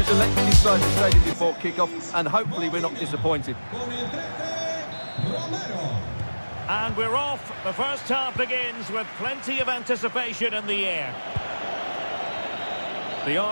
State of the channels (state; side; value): inverted; both; correlation -1.00